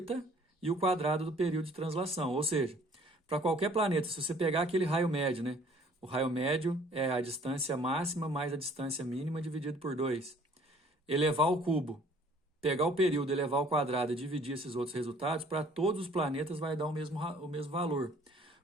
e o quadrado do período de translação. Ou seja, para qualquer planeta, se você pegar aquele raio médio, né? O raio médio é a distância máxima mais a distância mínima dividido por 2. Elevar ao cubo, pegar o período, elevar ao quadrado e dividir esses outros resultados, para todos os planetas vai dar o mesmo valor.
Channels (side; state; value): both; normal; correlation 0.56